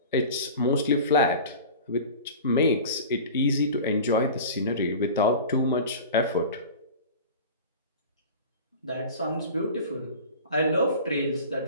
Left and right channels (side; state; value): both; inverted; correlation -0.36